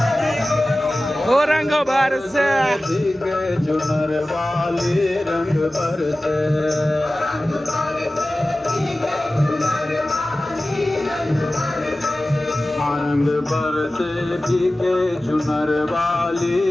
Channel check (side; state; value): both; normal; correlation 0.96